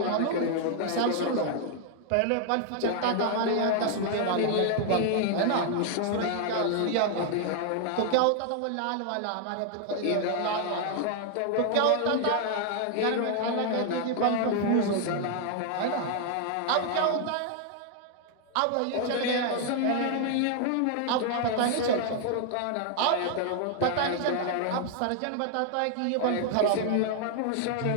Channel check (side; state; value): both; different; correlation 0.00